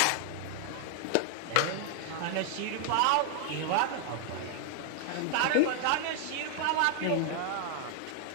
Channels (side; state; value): both; different; correlation 0.00